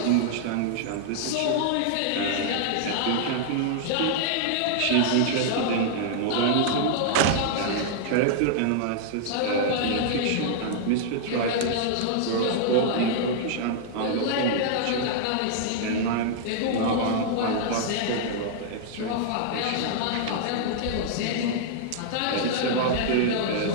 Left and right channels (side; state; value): both; different; correlation -0.01